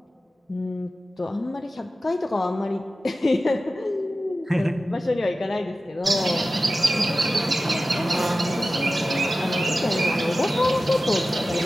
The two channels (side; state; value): both; normal; correlation 0.94